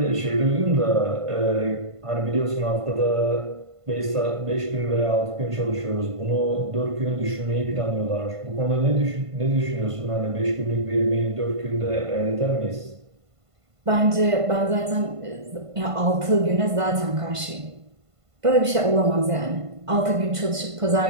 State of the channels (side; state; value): left; late; 1.5 ms